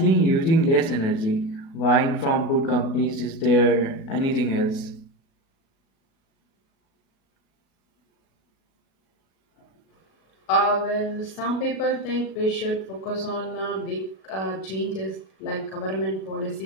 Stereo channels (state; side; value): late; right; 37 ms